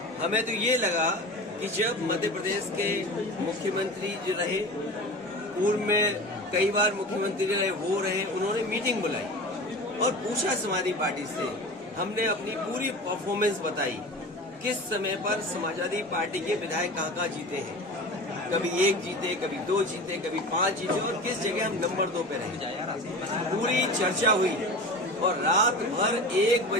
हमें तो ये लगा कि जब मध्य प्रदेश के मुख्यमंत्री जो रहे, पूर्व में कई बार मुख्यमंत्री रहे, वो रहे, उन्होंने मीटिंग बुलाई और पूछा समाजवादी पार्टी से। हमने अपनी पूरी परफॉर्मेंस बताई, किस समय पर समाजवादी पार्टी के विधायक कहाँ जीते हैं, कभी 1 जीते, कभी 2 जीते, कभी 5 जीते और किस जगह हम नंबर 2 पे रहे। पूरी चर्चा हुई और रात भर 1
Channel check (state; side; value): normal; both; correlation 0.33